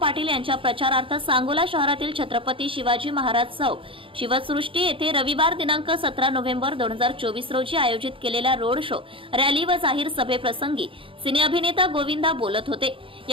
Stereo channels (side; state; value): left; late; 0.25 ms